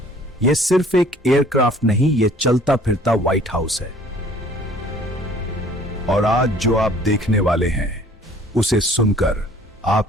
यह सिर्फ एक एयरक्राफ्ट नहीं, यह चलता फिरता व्हाइट हाउस है। और आज जो आप देखने वाले हैं, उसे सुनकर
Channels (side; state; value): both; normal; correlation 0.53